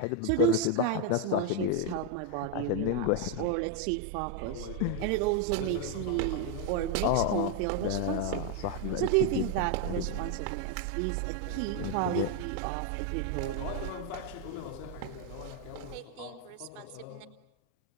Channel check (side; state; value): both; different; correlation 0.01